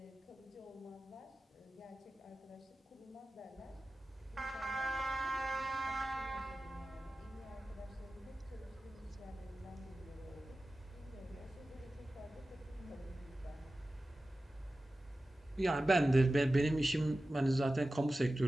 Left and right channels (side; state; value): both; normal; correlation 0.95